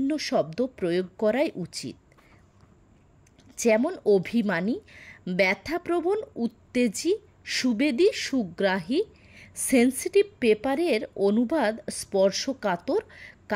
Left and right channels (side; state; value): both; identical; correlation 1.00